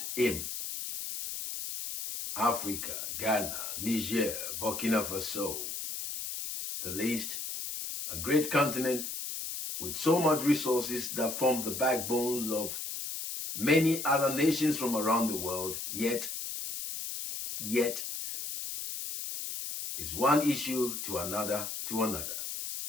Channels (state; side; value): noise; left; hiss, 5 dB below the sound